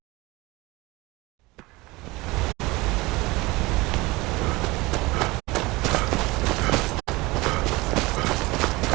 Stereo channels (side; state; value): left; quieter; 22.3 dB